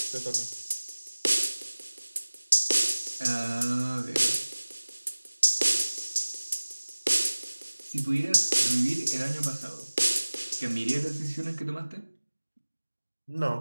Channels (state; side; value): inverted; both; correlation -1.00